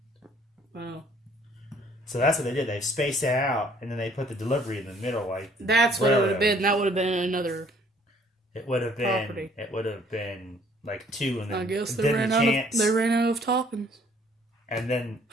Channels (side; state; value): both; normal; correlation 0.60